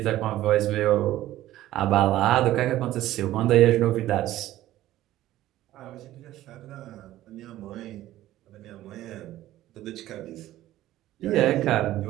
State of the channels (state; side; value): quieter; left; 14.6 dB